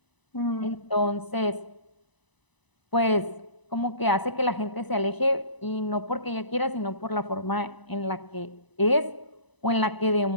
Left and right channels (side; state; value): right; late; 1.0 ms